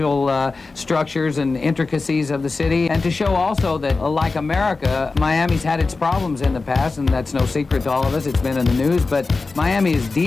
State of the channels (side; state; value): right; quieter; 3.9 dB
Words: structures and intricacies of the city, and to show also that, like America, Miami's had its problems in the past, and that's no secret to all of us. It's been in the news, but Miami is